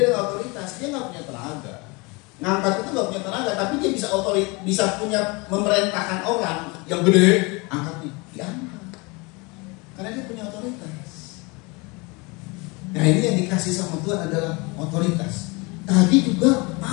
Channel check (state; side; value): quieter; right; 27.3 dB